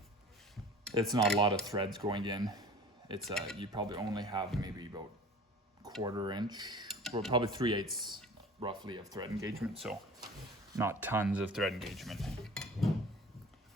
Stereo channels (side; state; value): both; normal; correlation 0.42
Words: it's not a lot of threads going in. It's you probably only have maybe about 1/4 inch, or probably 3/8 roughly of thread engagement. So not tons of thread engagement.